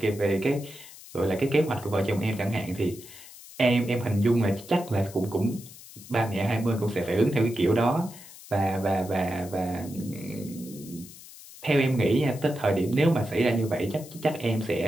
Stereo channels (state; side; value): noise; left; hiss, 18 dB below the sound